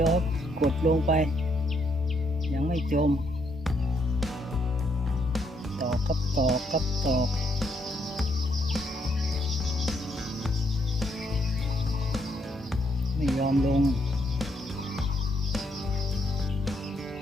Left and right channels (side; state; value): both; normal; correlation 0.74